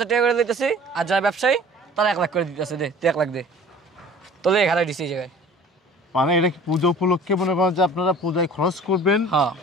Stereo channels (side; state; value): both; normal; correlation 0.47